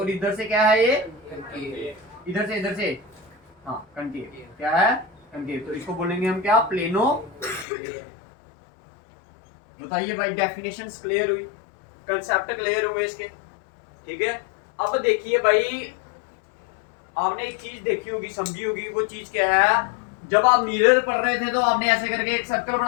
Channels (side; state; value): right; drops out; at 7.7 s